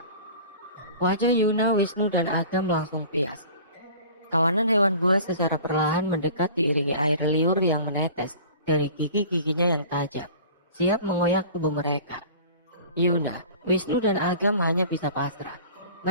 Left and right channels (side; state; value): both; inverted; correlation -0.43